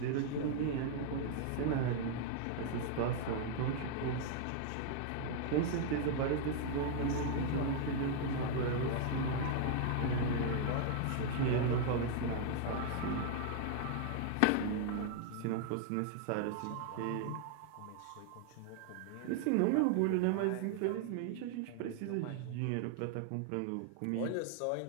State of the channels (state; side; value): different; both; correlation 0.00